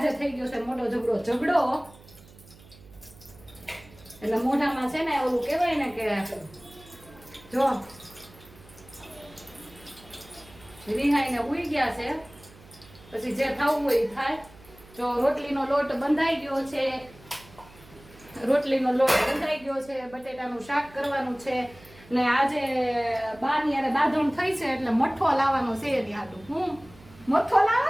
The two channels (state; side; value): noise; right; hum, 23 dB below the sound